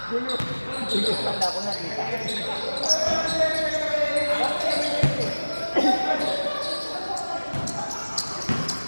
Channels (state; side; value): inverted; both; correlation -1.00